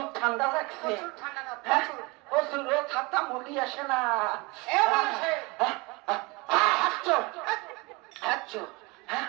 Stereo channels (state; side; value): quieter; left; 26.0 dB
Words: ঠান্ডা লাগছে, প্রচুর ছাতা মুড়ি আসে না।